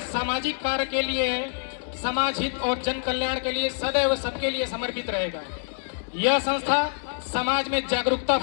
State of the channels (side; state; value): right; silent; digital silence